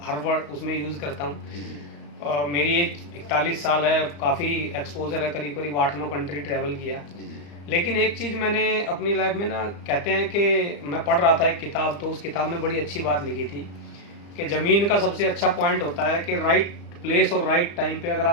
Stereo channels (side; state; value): right; late; 35 ms